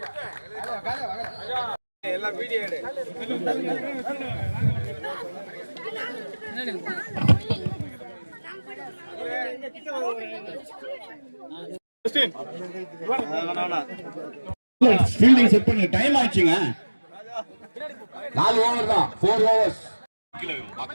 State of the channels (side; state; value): both; inverted; correlation -1.00